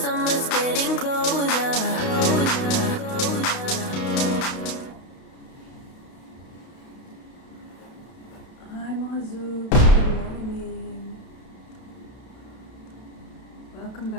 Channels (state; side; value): late; right; 32 ms